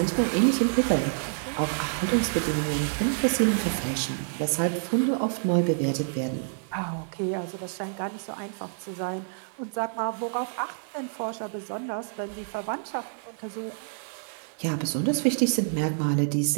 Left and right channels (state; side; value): silent; left; digital silence